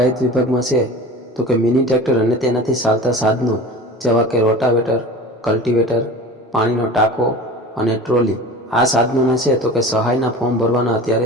વિભાગમાં છે તો કે મિની ટ્રેક્ટર અને તેનાથી ચાલતા સાધનો જેવા કે રોટાવેટર, કલ્ટિવેટર, પાણીનો ટાંકો અને ટ્રોલી આ સાધનોના છે તો કે સહાયના ફોર્મ ભરવાના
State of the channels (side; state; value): both; normal; correlation 0.36